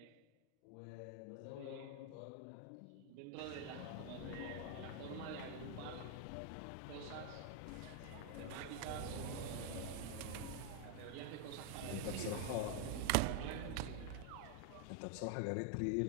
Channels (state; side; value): different; both; correlation 0.00